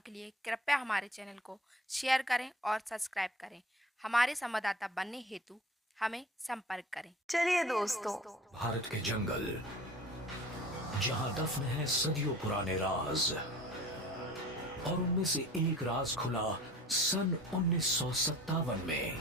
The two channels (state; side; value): normal; both; correlation 0.44